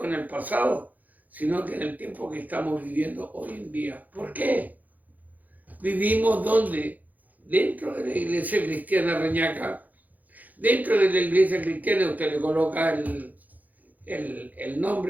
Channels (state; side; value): late; left; 0.081 ms